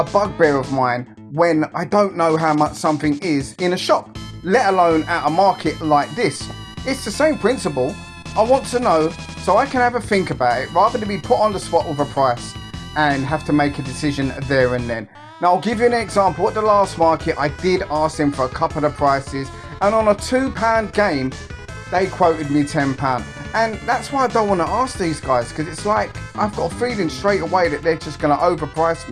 bugbear of mine when I don't know how much something is in a shop, let alone at a market like this. It's the same principle. I want to know so I can have a think about it rather than be put on the spot with a price and have to make a decision there and then. Now, I'll give you an example. At the last market, I did ask them for a couple of prices, and on a £2 game, they quoted me £10. And that's why I don't want to ask these guys, because it's like I've got a feeling straight away that they're just going to overprice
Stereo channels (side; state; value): both; identical; correlation 1.00